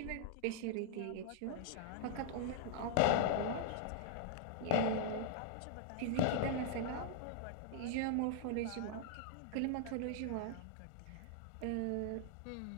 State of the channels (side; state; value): both; different; correlation -0.01